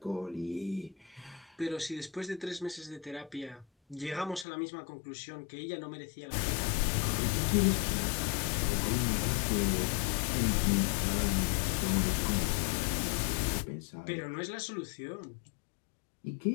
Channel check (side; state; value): right; drops out; at 4.5 s